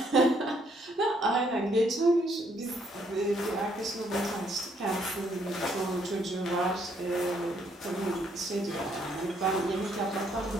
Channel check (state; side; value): normal; both; correlation 0.69